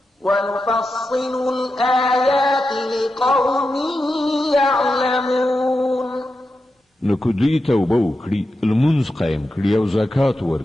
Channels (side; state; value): both; normal; correlation 0.89